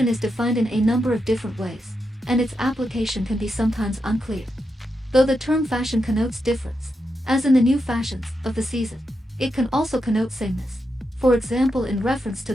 is defined in a number of different ways, and its application can be sometimes unclear. Though the term fashion connotes difference, as in the new fashions of the season, it can also connote sameness, for example in reference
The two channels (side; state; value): both; normal; correlation 0.85